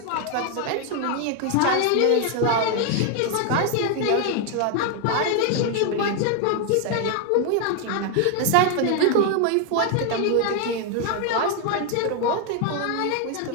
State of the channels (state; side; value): different; both; correlation 0.01